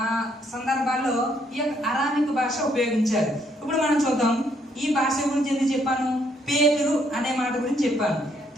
సందర్భాల్లో ఈ యొక్క అరామిక్ భాష ఉపయోగించారు. ఇప్పుడు మనం చూద్దాం. ఈ భాష గురించి ఎందుకు చెప్పాను? పేతురు అనే మాట గురించి చెప్పాను.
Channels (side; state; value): both; normal; correlation 0.70